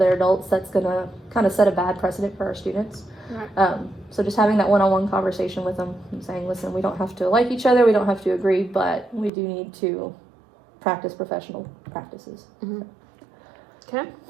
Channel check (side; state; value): left; drops out; at 9.3 s